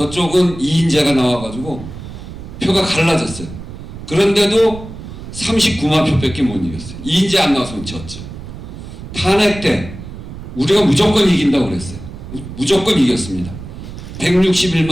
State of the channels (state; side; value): noise; right; rumble, 12 dB below the sound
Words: 이인재가 나와가지고 표가 갈라졌어요. 그런데도 39만 표밖에 못 이겼어요. 이인재 안 나와서 졌죠. 탄핵 때 우리가 무조건 이긴다고 그랬어요. 무조건 이겼습니다.